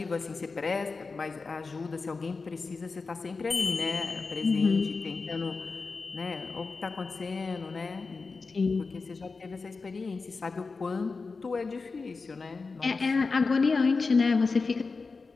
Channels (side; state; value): right; quieter; 4.3 dB